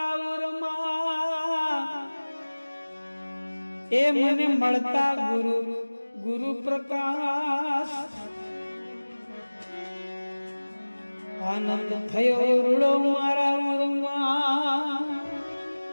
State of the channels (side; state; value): both; inverted; correlation -1.00